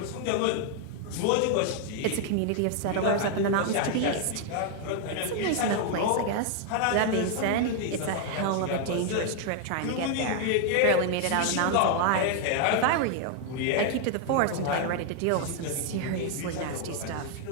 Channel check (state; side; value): different; both; correlation 0.00